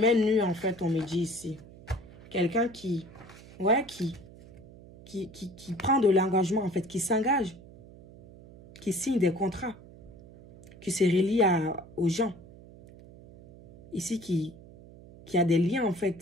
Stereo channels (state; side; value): noise; right; hum, 20 dB below the sound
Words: nu, en fait, on me dit ici. Quelqu'un qui prend de l'engagement, en fait, qui s'engage, qui signe des contrats, qui se relie aux gens. Ici, qui a des liens, en